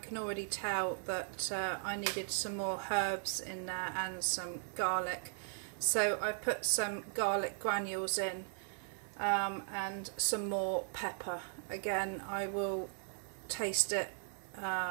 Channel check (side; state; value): left; silent; 53 dB below the other